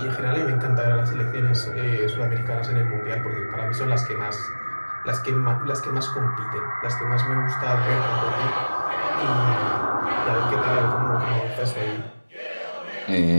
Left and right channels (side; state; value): both; inverted; correlation -1.00